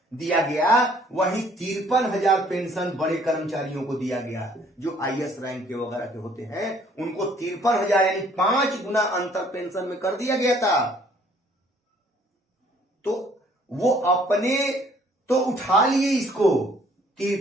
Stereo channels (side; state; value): both; normal; correlation 0.60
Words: दिया गया, वही 53,000 पेंशन बड़े कर्मचारियों को दिया गया, जो आईएएस रैंक के वगैरह के होते हैं, उनको 53,000 यानी 5 गुना अंतर पेंशन में कर दिया गया था। तो वो अपने तो उठा लिए इसको,